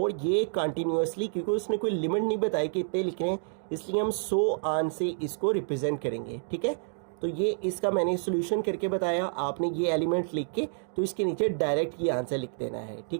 ये कंटिन्यूसली, क्योंकि उसने कोई लिमिट नहीं बताई कि इतने लिख रहे हैं, इसलिए हम 100 आन से इसको रिप्रेजेंट करेंगे, ठीक है। तो ये इसका मैंने सोल्यूशन करके बताया, आपने ये एलिमेंट लिख के तो इसके नीचे डायरेक्ट ये आंसर लिख देना है,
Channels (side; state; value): left; silent; digital silence